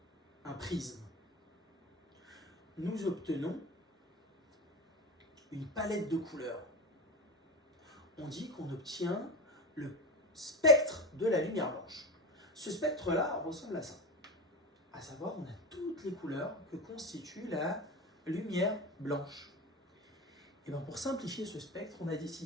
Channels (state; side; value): normal; both; correlation 0.24